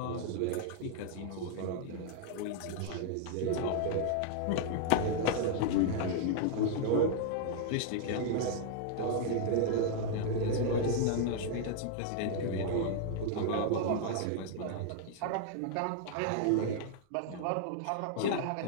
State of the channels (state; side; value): different; both; correlation 0.00